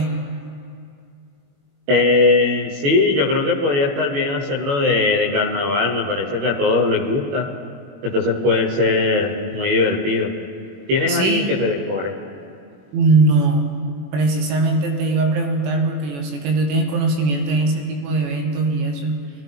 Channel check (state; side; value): late; left; 21 ms